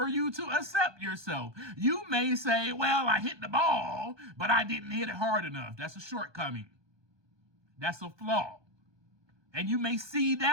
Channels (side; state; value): left; late; 1.2 ms